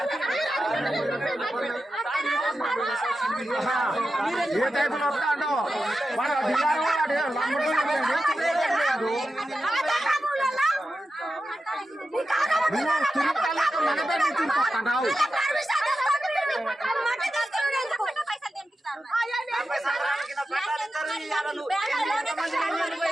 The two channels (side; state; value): both; normal; correlation 0.91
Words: ఏ టైపులో వస్తాడో మన